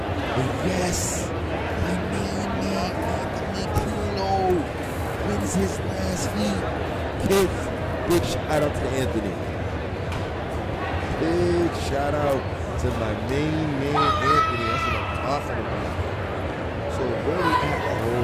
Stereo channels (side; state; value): both; identical; correlation 1.00